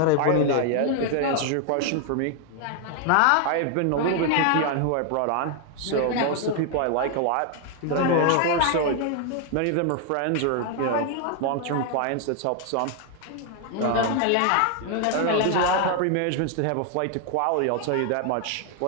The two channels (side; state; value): both; different; correlation 0.00